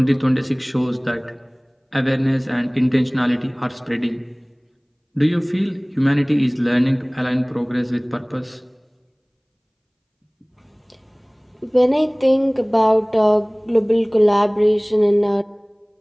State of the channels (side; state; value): both; identical; correlation 1.00